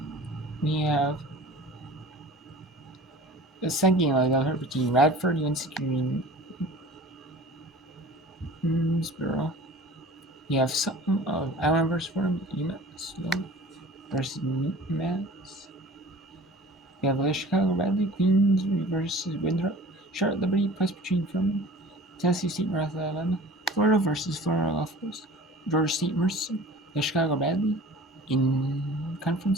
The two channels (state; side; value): normal; both; correlation 0.43